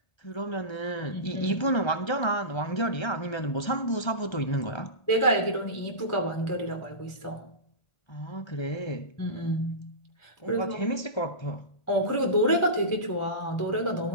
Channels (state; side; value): late; right; 1.3 ms